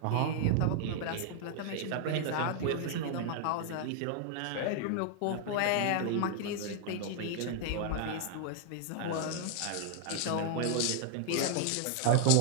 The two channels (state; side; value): different; both; correlation 0.00